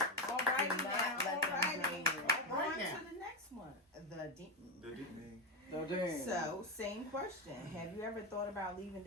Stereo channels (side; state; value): both; normal; correlation 0.10